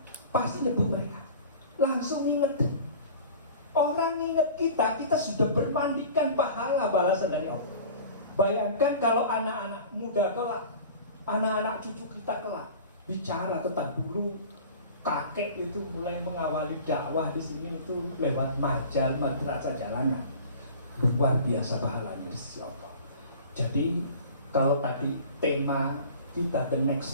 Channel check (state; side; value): inverted; both; correlation -0.41